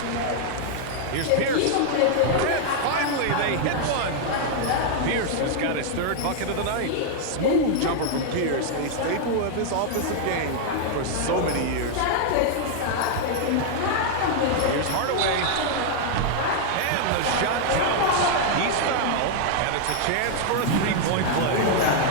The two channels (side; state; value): both; different; correlation 0.00